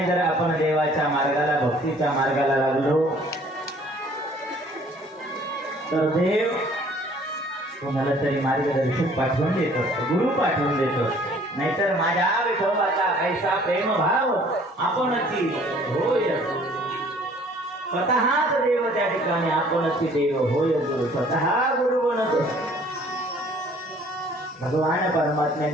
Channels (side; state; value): both; normal; correlation 0.56